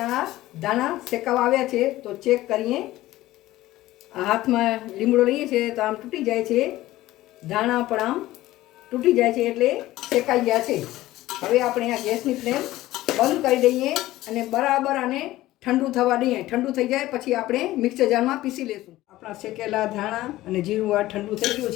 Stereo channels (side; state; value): right; quieter; 16.3 dB